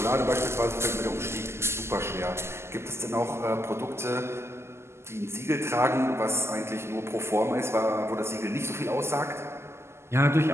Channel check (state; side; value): late; left; 0.12 ms